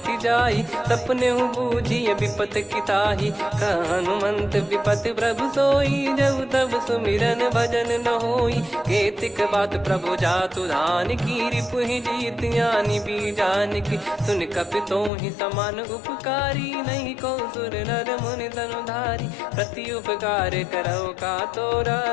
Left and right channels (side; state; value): right; drops out; at 15.1 s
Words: जाई सपने हूँ बूझिए विपत किताही हनुमंत विपत प्रभु सोई जब तब सुमिरन भजन न होई केतिक बात प्रभु जातु धान की रिपुहि जीत यानी बीजान की सुन कपितो ही समान उपकारी नहीं को सुर नर मुनि तनुधारी प्रति उपकार करो का तोरा